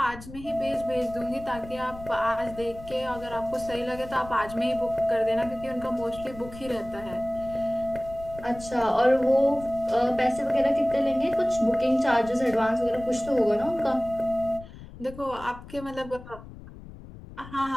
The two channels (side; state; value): left; noise; rumble, 16 dB below the sound